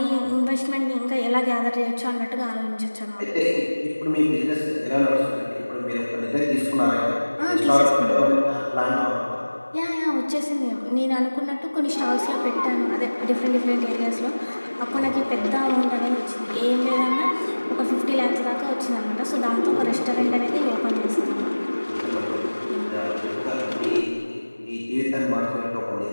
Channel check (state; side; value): inverted; both; correlation -1.00